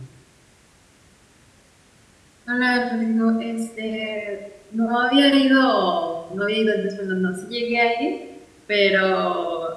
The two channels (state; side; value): identical; both; correlation 1.00